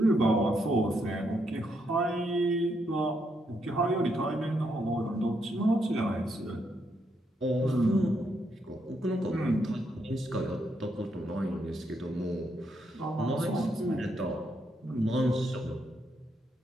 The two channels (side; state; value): both; normal; correlation 0.78